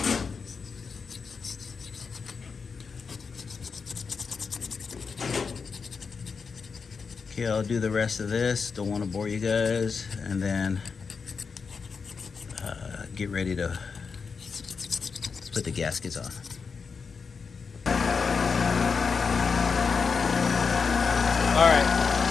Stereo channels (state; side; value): quieter; right; 5.4 dB